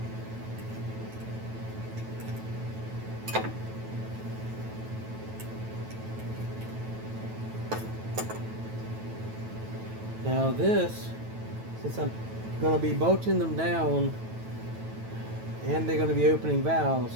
Now this, since I'm going to be bolting them down and they're going to be opening valves,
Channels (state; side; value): late; left; 9.2 ms